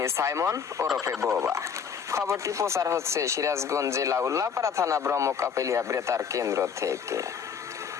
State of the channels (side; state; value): right; quieter; 6.8 dB